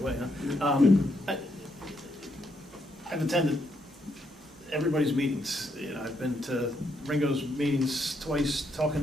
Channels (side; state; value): both; normal; correlation 0.77